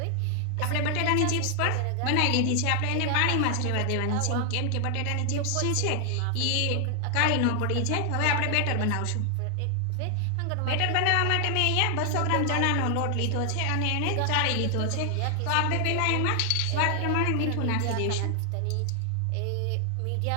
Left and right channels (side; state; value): both; different; correlation 0.00